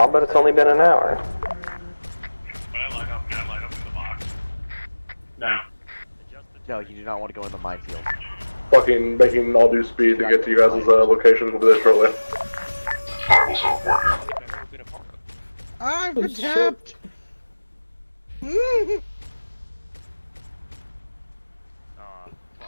but it's only been an hour. Can I line up in the box? No. No, you do not want to go in the minefield. Fucking making all due speed to get to you guys' locations. We'll be there shortly. I will support you. I've been tapped!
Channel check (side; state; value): both; inverted; correlation -1.00